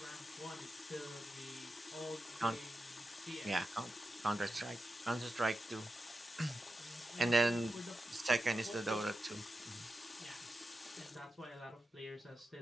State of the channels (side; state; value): both; normal; correlation 0.90